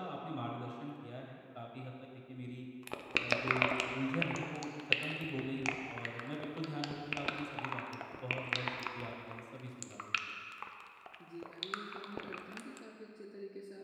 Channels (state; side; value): identical; both; correlation 1.00